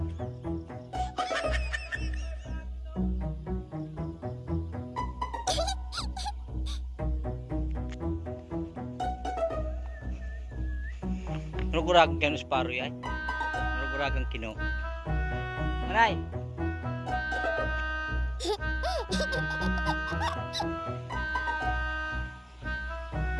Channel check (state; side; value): identical; both; correlation 1.00